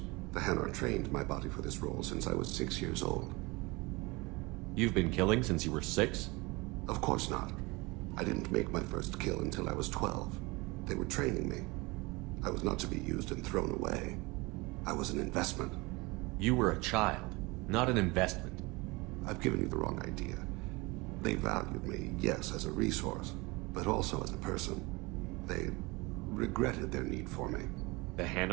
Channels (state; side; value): quieter; left; 24.6 dB